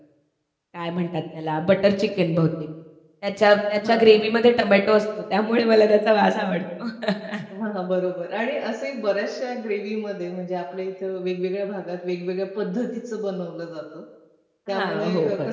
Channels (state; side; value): identical; both; correlation 1.00